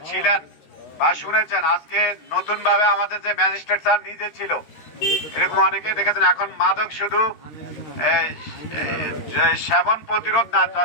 ছিলেন বা শুনেছেন, আজকে নতুন ভাবে আমাদের যে ম্যাজিস্ট্রেট স্যার নিজে ছিল, এরকম অনেকে দেখেছেন। এখন মাদক শুধু সেবন প্রতিরোধ না,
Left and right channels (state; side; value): late; right; 13 ms